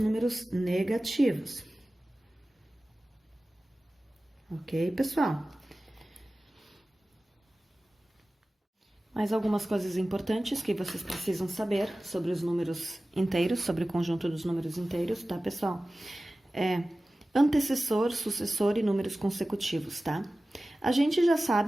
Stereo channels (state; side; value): normal; both; correlation 0.96